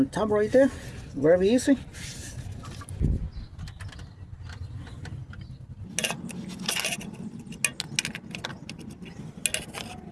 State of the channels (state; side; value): identical; both; correlation 1.00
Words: tab right there, very easy.